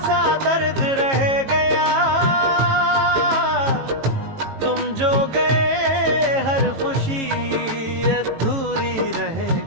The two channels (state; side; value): late; left; 18 ms